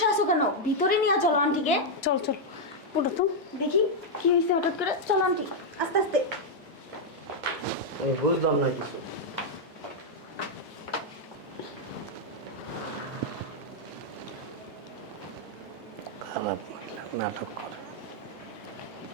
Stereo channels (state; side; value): late; left; 1.8 ms